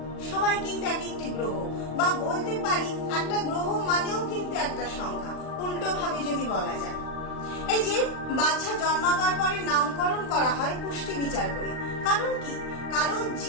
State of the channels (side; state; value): right; late; 39 ms